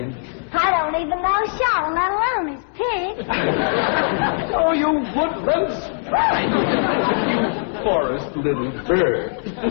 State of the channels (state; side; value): silent; right; digital silence